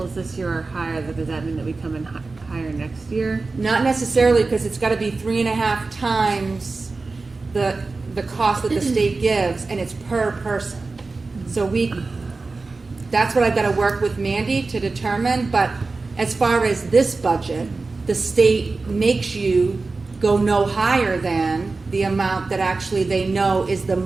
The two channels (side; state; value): left; quieter; 3.8 dB